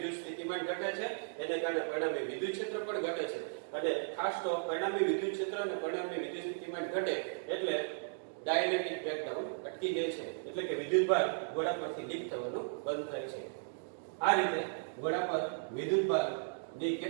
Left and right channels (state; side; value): silent; left; digital silence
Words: સ્થિતિમાન ઘટે છે, એને કારણે પરિણામી વિદ્યુત ક્ષેત્ર પણ ઘટે છે. અને ખાસ તો પરિણામી વિદ્યુત ક્ષેત્ર અને પરિણામી વિદ્યુત સ્થિતિમાન ઘટે એટલે ડાયલેક્ટ્રિક બ્રેકડાઉન અટકી જાય છે, એટલે કે વિદ્યુતભાર ગોળા પરથી લીક થવાનું બંધ થાય છે. આ રીતે ગોળા પર વિદ્યુતભારની